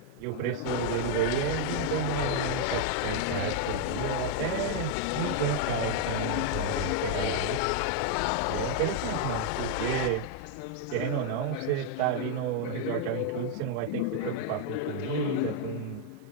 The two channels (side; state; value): both; different; correlation 0.00